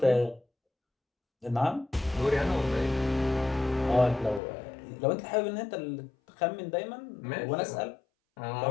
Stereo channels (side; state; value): right; drops out; at 4.4 s